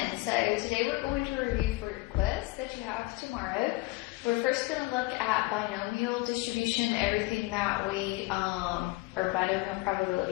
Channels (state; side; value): quieter; right; 21.9 dB